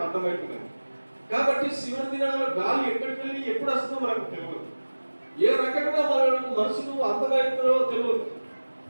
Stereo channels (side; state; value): both; inverted; correlation -1.00